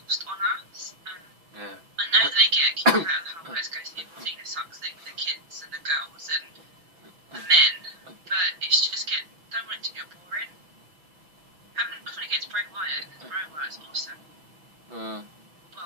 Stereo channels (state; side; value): late; left; 6.0 ms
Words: on us, and Yeah. I know they get a kick out of the whole let's go Cena sucks thing with the kids and the girls and the men, but it's just don't want it to get boring. Having nothing against Bray Wyatt, because Bray Wyatt's awesome.